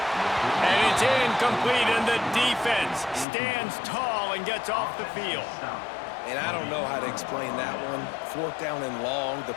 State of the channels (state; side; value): drops out; right; at 3.2 s